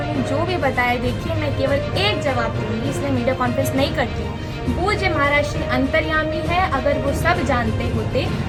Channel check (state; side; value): identical; both; correlation 1.00